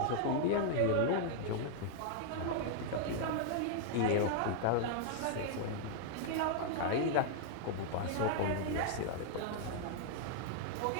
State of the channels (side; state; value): both; different; correlation 0.00